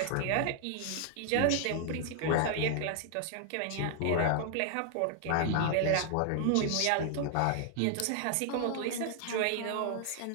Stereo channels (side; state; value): both; different; correlation 0.00